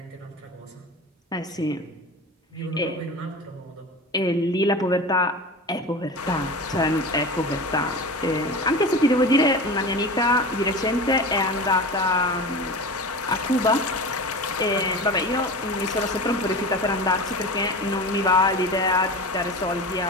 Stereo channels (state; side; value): normal; both; correlation 0.31